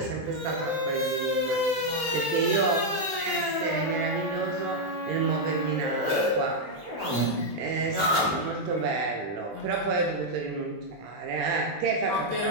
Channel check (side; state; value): left; late; 20 ms